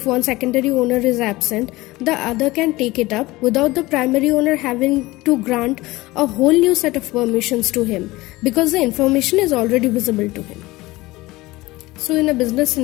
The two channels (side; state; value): right; quieter; 19.9 dB